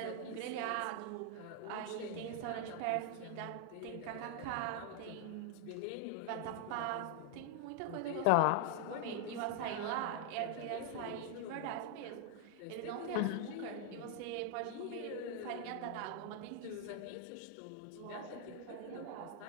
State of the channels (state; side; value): different; both; correlation 0.00